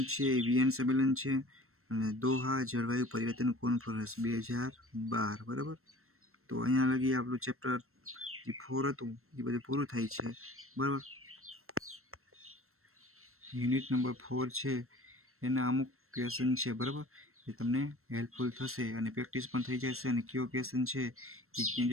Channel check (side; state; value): left; late; 0.62 ms